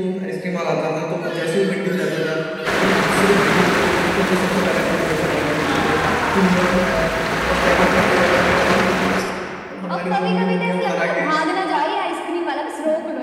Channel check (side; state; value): both; identical; correlation 1.00